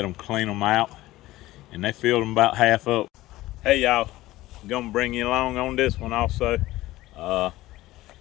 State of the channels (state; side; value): quieter; right; 17.1 dB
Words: them clean them out, and they filled them about half up. Hey y'all, I'm gonna bring you along on this one also.